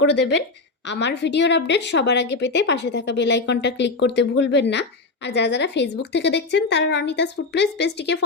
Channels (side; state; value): right; quieter; 3.7 dB